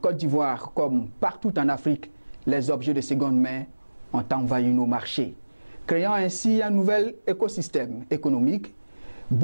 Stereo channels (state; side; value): inverted; both; correlation -1.00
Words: d'Ivoire, comme partout en Afrique, les objets de seconde main ont envahi nos marchés, créant ainsi un nouvel écosystème économique,